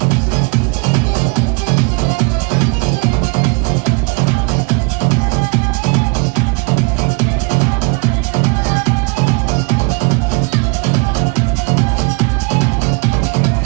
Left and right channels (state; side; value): quieter; left; 29.7 dB